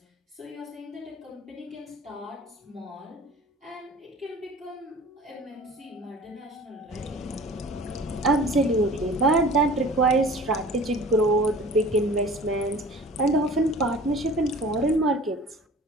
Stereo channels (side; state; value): both; normal; correlation 0.44